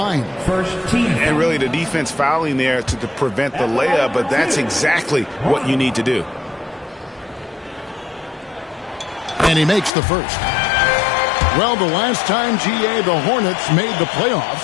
And really the defense fouling there to prevent the layup, but that's exactly what you need to do. And he makes the first. Well, the last time, GA, the Hornets made the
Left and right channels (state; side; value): drops out; right; at 9.9 s